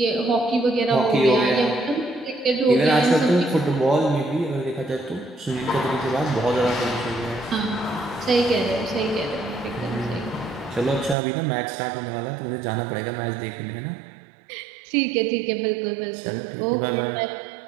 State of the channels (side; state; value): left; drops out; at 11.2 s